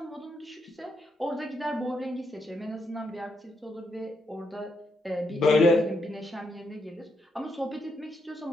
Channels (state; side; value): normal; both; correlation 0.79